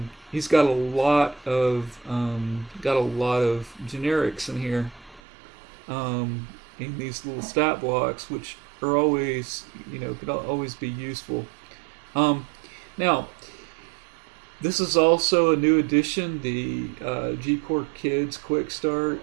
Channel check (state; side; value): drops out; left; at 5.2 s